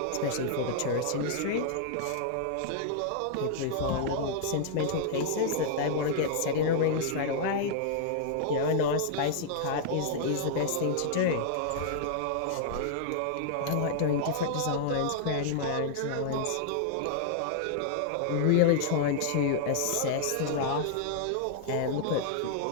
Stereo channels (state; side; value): different; both; correlation -0.01